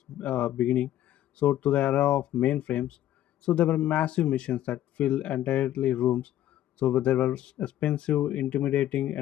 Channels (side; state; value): right; quieter; 12.8 dB